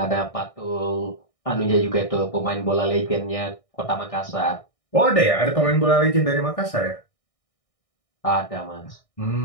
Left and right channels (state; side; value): late; right; 1.6 ms